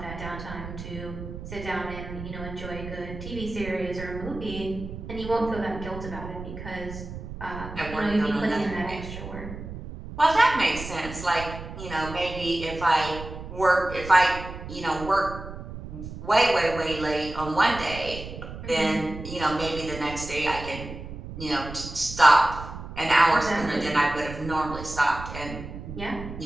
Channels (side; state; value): right; noise; rumble, 10 dB below the sound